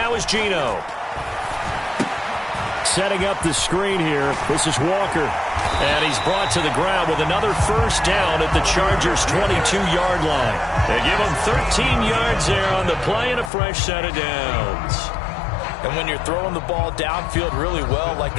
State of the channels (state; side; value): drops out; right; at 13.5 s